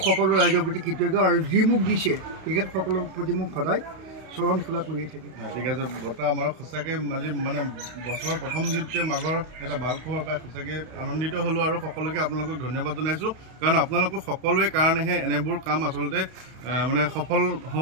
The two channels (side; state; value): left; late; 31 ms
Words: সকলো ৰাইজৰ প্ৰতি কৃতজ্ঞ আৰু যি মোক দিছে তেখেতসকলৰ প্ৰতি মোক সদায় চৰণ সেৱা কৰিয়ে থাকিম। ঠিক আছে বৰ্তা আমাৰ সঁচাকৈ আজি মানে বছৰৰ প্ৰথম দিনটোৱে মাঘৰ এটা ভাল খবৰ পাই সঁচাকৈ আনন্দিত হ'লোঁ আৰু সকলোকে আপোনালোকক ধন্যবাদ জনাইছোঁ কাৰণ আপোনালোকৰ সকলোৰে কাৰণেহে এনেবোৰ কাম আচলতে মানে সফল